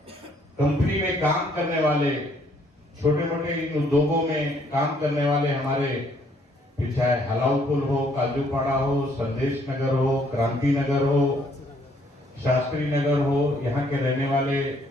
कंपनी में काम करने वाले, छोटे मोटे इन उद्योगों में काम करने वाले हमारे, चाहे हलाउपुल हो, काजूपाड़ा हो, संदेश नगर हो, क्रांति नगर हो, शास्त्री नगर हो, यहाँ के रहने वाले,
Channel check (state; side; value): normal; both; correlation 0.66